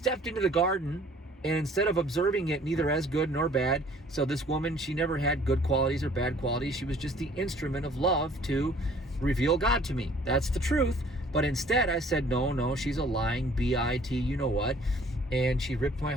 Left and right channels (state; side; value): normal; both; correlation 0.55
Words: into the garden, and instead of observing it neither as good nor bad, so this woman, she never had good qualities or bad qualities. She was just the instrument of love to reveal God to me. That's the truth. But instead I said, no, she's a lying BIT, you know what? And she ripped my